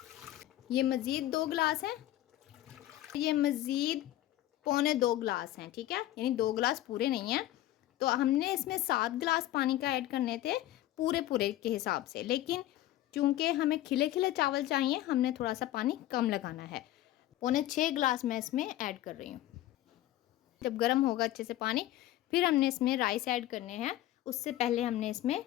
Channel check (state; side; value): quieter; right; 14.4 dB